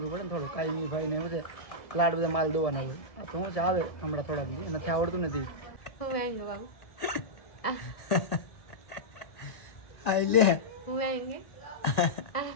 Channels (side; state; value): right; late; 1.9 ms